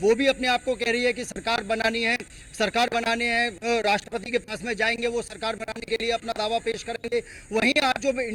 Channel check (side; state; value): both; identical; correlation 1.00